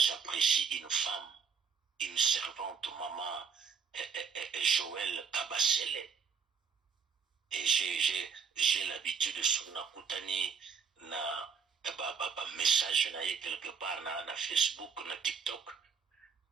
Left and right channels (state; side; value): quieter; left; 6.3 dB